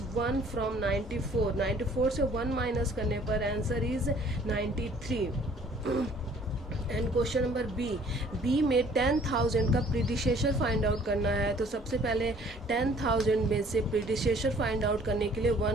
1 from 94। 94 से 1 माइनस करने पर answer is 93। And question number B में 10,000 का प्रीडिसेसर फाइंड आउट करना है। तो सबसे पहले 10,000 में से प्रीडिसेसर फाइंड आउट करने के लिए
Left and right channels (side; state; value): both; normal; correlation 0.56